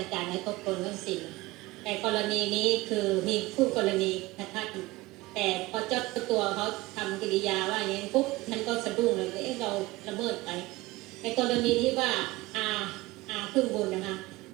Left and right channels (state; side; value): quieter; left; 20.1 dB